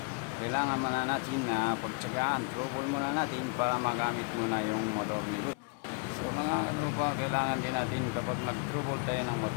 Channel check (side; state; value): right; quieter; 33.9 dB